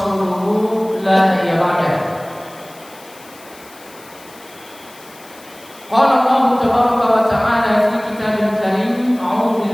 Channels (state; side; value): noise; left; hiss, 23 dB below the sound